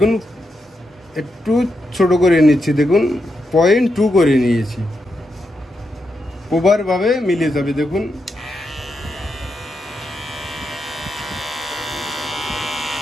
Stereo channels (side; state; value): both; normal; correlation 0.84